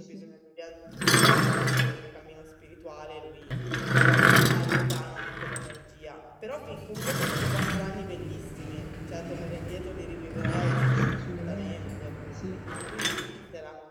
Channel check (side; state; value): both; identical; correlation 1.00